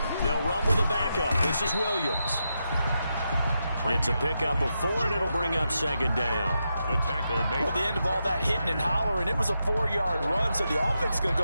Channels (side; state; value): both; inverted; correlation -0.85